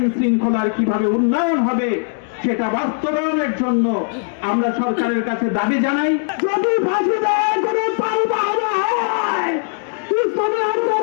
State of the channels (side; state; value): right; silent; digital silence